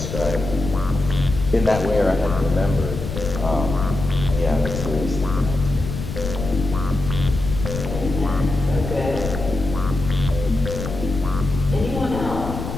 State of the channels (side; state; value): left; noise; rumble, 6 dB below the sound